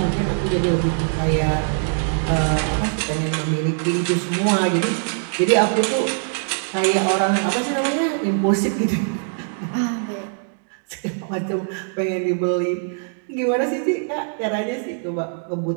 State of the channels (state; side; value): silent; left; digital silence